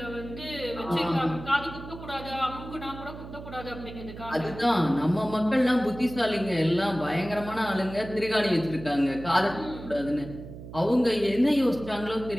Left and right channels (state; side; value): noise; right; hum, 13 dB below the sound